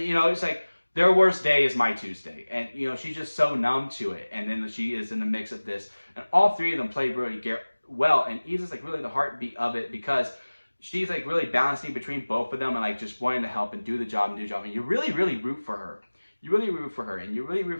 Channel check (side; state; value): both; inverted; correlation -1.00